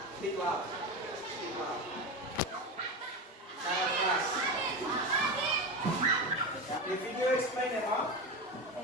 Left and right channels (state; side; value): normal; both; correlation 0.21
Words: speak loud, speak loud. Sangat keras. The video explain about